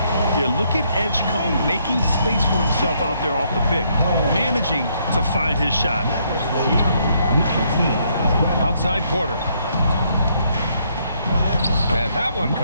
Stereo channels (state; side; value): inverted; both; correlation -0.72